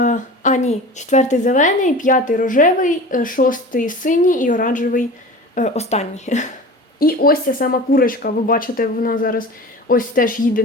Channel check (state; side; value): normal; both; correlation 0.36